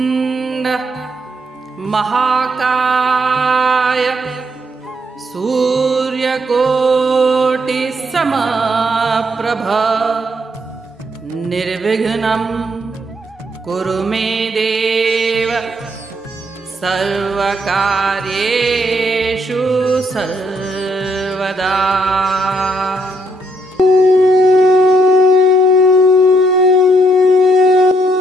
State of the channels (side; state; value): both; normal; correlation 0.73